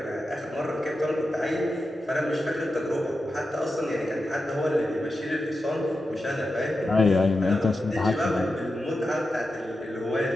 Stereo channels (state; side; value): normal; both; correlation 0.90